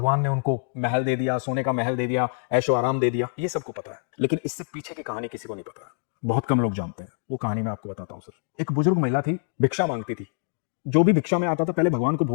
ने उनको महल दे दिया, सोने का महल दे दिया, ऐशो आराम दे दिया। ये सबको पता है, लेकिन इससे पीछे की कहानी किसी को नहीं पता है, बहुत कम लोग जानते हैं। वो कहानी मैं आपको बताता हूं सर। एक बुजुर्ग महिला थी, भिक्षा मांगती थी। जो भी भिक्षा में आता था पहले भगवान को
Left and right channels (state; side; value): silent; right; digital silence